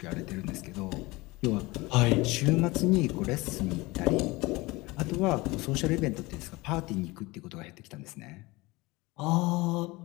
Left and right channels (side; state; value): right; quieter; 22.4 dB